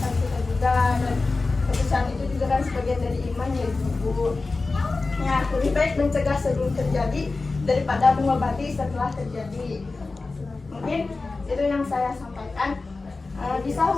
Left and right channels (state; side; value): quieter; right; 3.7 dB